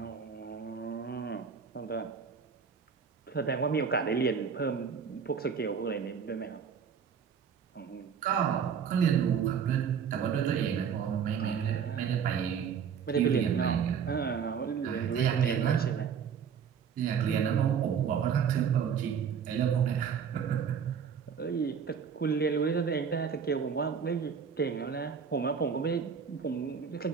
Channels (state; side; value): quieter; left; 7.0 dB